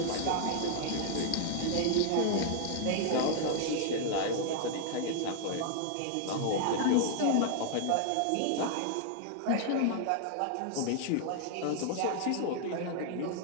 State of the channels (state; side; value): different; both; correlation 0.00